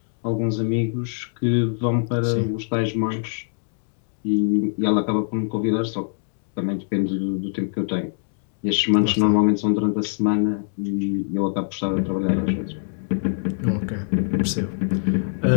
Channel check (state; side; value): silent; right; digital silence